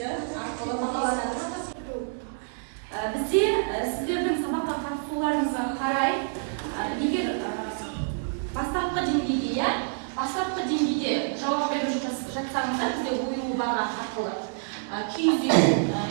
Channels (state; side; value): silent; left; digital silence